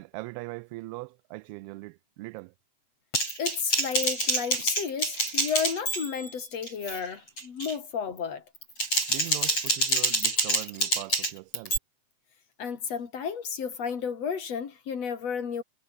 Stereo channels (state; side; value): late; right; 7.7 ms